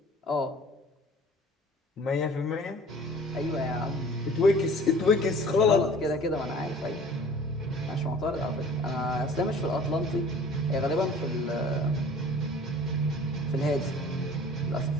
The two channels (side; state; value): both; normal; correlation 0.47